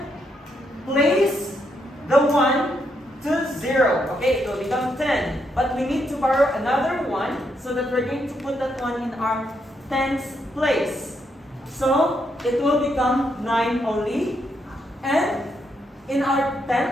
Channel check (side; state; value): both; normal; correlation 0.78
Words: place the 1 to 0. Okay, it will become 10. But we need to borrow another 1, so that we're going to put that one in our tens place. So it will become 9 only. And in our